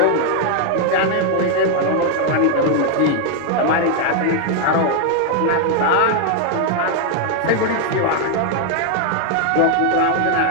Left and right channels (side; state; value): both; different; correlation 0.00